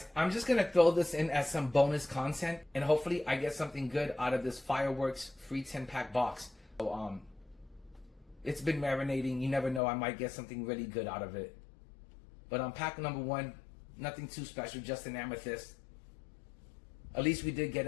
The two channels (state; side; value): drops out; right; at 9.8 s